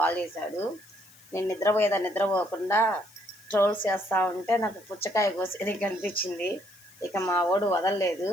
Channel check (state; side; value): noise; left; hiss, 25 dB below the sound